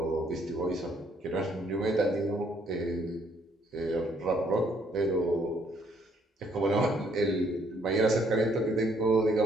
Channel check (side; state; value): both; normal; correlation 0.67